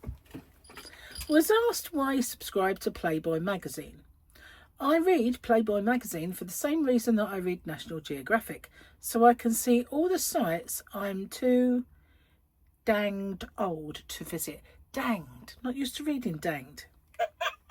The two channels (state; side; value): identical; both; correlation 1.00